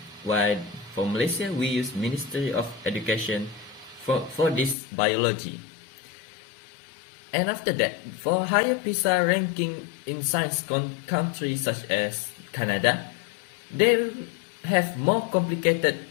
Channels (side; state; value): right; drops out; at 4.8 s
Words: while for Malaysia we use Ministry of Education for this biology. And after that, for higher PISA ranking in science countries such as Canada, they have more complicated